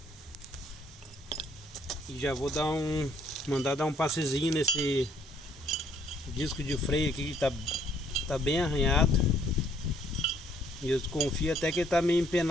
E já vou mandar dar um passezinho nesse disco de freio aqui que tá bem arranhado. E eu confio até que ele tá meio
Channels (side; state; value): both; normal; correlation 0.65